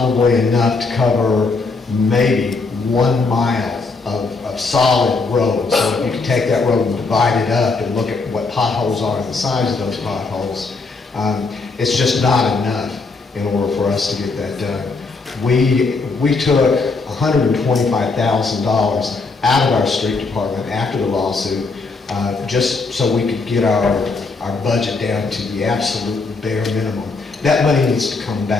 enough to cover maybe 1 mile of solid road. So if you can take that road and divide it up and look at what potholes are and the size of those potholes, it's just not enough in order for us to get that done. We took $125,000 out of our street department after the lawsuit, just so we could get our budget down to the absolute bare minimum. That money needs to come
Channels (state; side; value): quieter; right; 4.0 dB